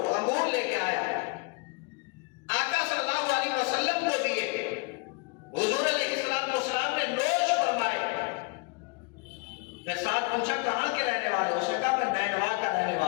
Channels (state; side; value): quieter; right; 28.3 dB